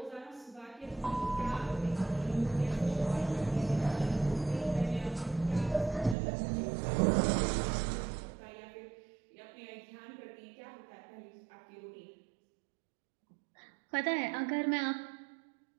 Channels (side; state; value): left; drops out; at 6.2 s